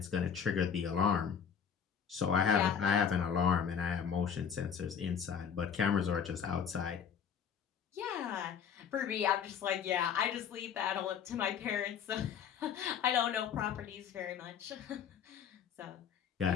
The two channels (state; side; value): quieter; right; 7.6 dB